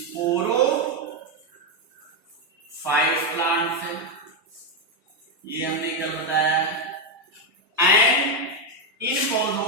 प्लांट है, ये हमने कल बताया। एंड इन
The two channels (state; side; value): normal; both; correlation 0.05